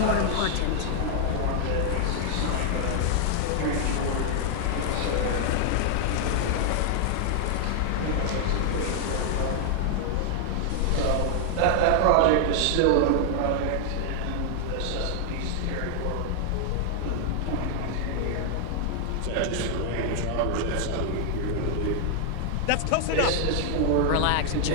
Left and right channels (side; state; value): both; different; correlation 0.00